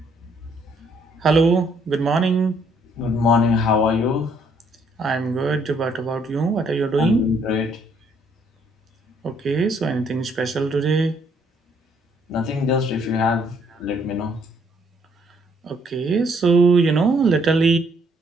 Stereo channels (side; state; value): both; normal; correlation 0.67